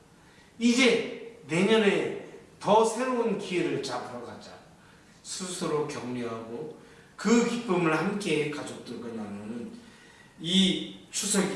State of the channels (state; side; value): identical; both; correlation 1.00